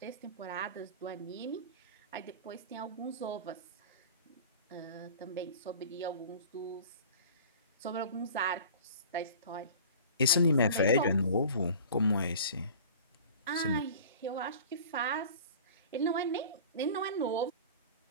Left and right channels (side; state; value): both; inverted; correlation -0.41